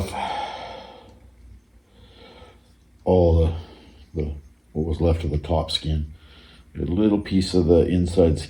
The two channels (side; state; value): both; identical; correlation 1.00